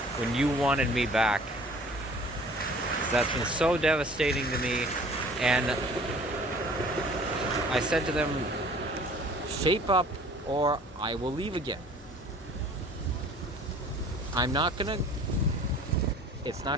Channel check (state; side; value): normal; both; correlation 0.50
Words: when you wanted me back. 'Cause that's been so devastating to me. And I said to them, shape up or I will leave again. It's